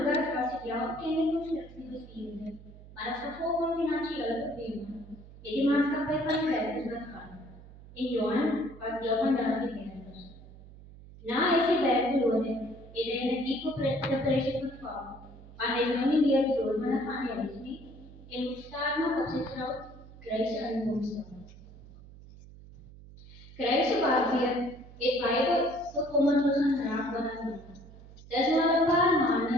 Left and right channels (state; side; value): noise; right; hum, 19 dB below the sound